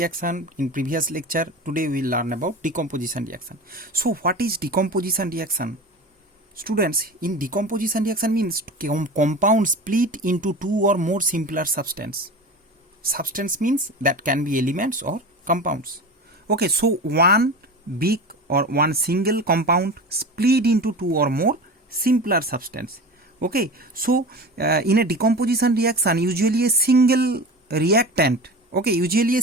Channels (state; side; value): normal; both; correlation 0.31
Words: in previous lecture, today we will learn about decomposition reaction. So what is decomposition reaction? Students, in decomposition reaction means compound split into two or more simpler substance. Substance means that can be elements or compounds. Okay, so one big or one single compound split into two or more simpler substance. Okay, so in a decomposition reaction, usually a single reactant,